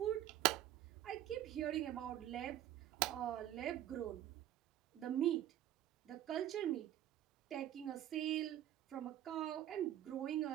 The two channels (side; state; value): left; quieter; 12.4 dB